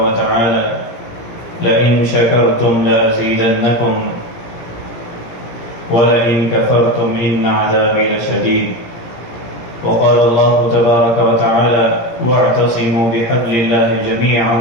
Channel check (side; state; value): right; late; 17 ms